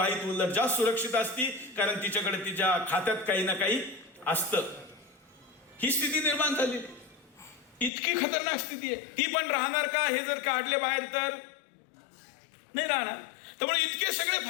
उलट जास्त सुरक्षित असती, कारण तिच्याकडे तिच्या खात्यात काही ना काही असतं. ही स्थिती निर्माण झाली. इतकी खतरनाक स्थिती आहे. ती पण राहणार का हे जर काढले बाहेर तर नाही राहणार. त्यामुळे इतके सगळे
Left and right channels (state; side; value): drops out; right; at 7.9 s